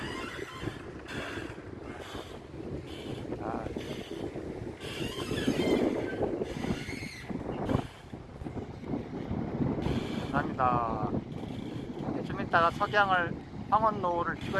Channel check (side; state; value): both; identical; correlation 1.00